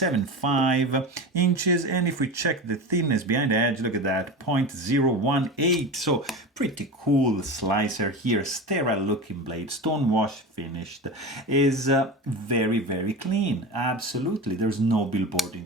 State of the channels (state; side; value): normal; both; correlation 0.27